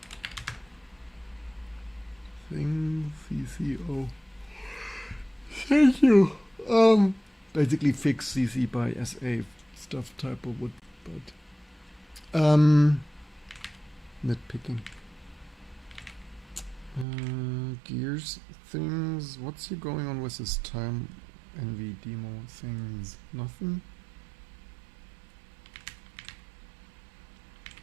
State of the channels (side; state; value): left; drops out; at 17.1 s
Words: thing CCO. Thank you. Basically fix CC by SA stuff typo would, but nitpicking. Gears things. What's here going on with this time NV demo things? Nothing.